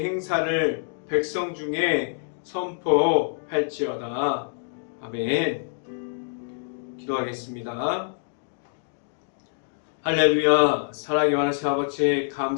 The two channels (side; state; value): right; silent; digital silence